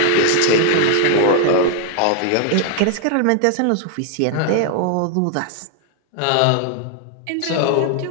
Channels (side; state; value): both; different; correlation 0.00